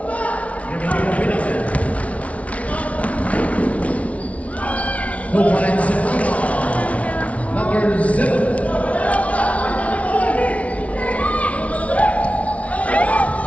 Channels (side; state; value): right; late; 0.065 ms